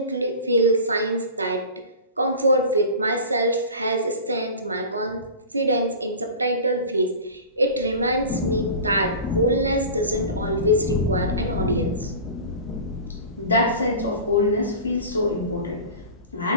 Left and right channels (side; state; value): both; inverted; correlation -0.35